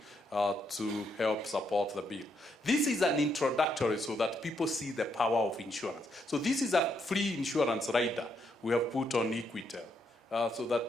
to help support the bill. This is an introductory so that people see the power of insurance. So this is a free insurance rider we have put on Equitel, so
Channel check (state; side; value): normal; both; correlation 0.76